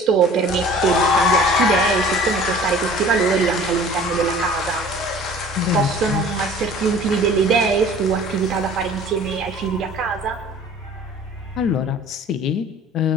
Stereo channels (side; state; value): both; normal; correlation 0.47